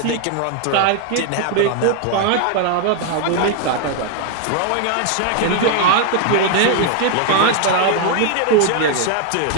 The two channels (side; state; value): both; different; correlation 0.00